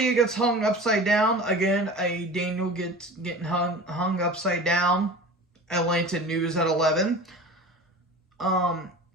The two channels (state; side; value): normal; both; correlation 0.37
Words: gets hung upside down. Again, Daniel getting hung upside down. Atlanta News at 11.